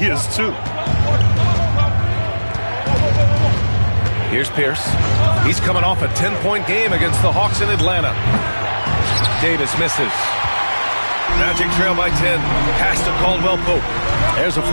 too. Here's Pierce. He's coming off a 10-point game against the Hawks in Atlanta. Davis misses. Magic trail by 10. Pass to Caldwell Pope. There's a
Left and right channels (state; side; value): inverted; both; correlation -1.00